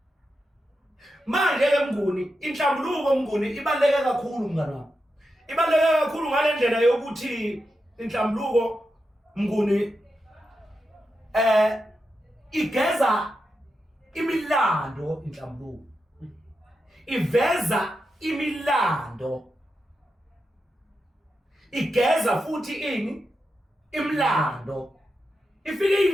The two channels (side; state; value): both; normal; correlation 0.88